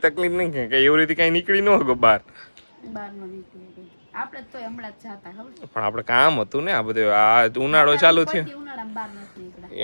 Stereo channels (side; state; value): both; inverted; correlation -1.00